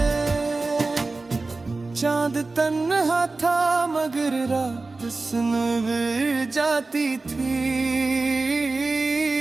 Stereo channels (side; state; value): left; quieter; 3.5 dB